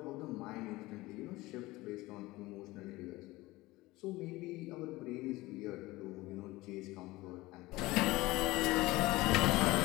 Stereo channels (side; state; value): right; quieter; 19.8 dB